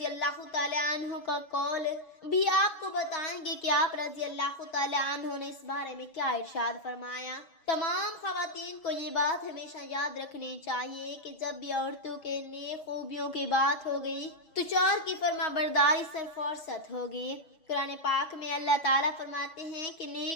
اللہ تعالیٰ عنہ کا قول بھی آپ کو بتائیں گے کہ آپ رضی اللہ تعالیٰ عنہ نے اس بارے میں کیا ارشاد فرمایا۔ تمام خواتین کو یہ بات ہمیشہ یاد رکھنی چاہیے کہ جب بھی عورتوں کے نیک خوبیوں کی بات ہوگی تو شوہر کی فرما برداری سے فرصت ہوگی۔ قرآن پاک میں اللہ تعالیٰ فرماتے ہیں کہ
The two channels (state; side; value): late; right; 6.2 ms